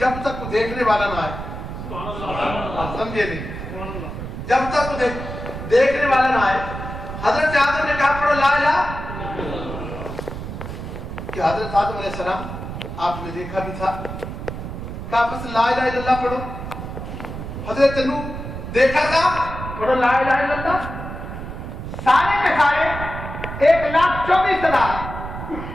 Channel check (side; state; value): right; noise; rumble, 8 dB below the sound